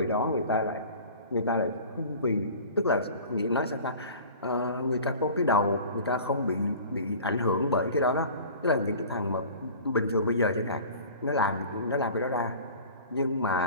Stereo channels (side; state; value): both; inverted; correlation -0.41